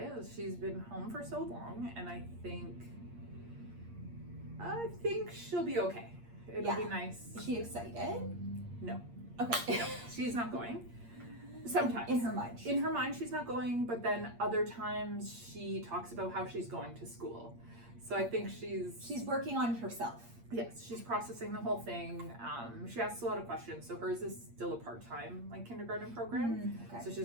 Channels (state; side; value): late; left; 8.6 ms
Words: She's been home for so long, and I think she'll be okay. It'll be nice. Is she excited? No. Okay. No, she's not going. Sometimes. In her mind. In her mind, she's not going, but then other times she talks about how she's going to school. So I think she's working on it herself. Yes, she's processing the whole thing. She asks a lot of questions. So hers is still a part-time kindergarten program. Okay. So